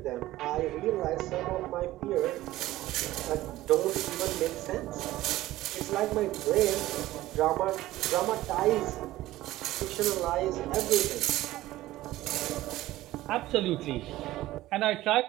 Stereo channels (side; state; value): left; quieter; 16.1 dB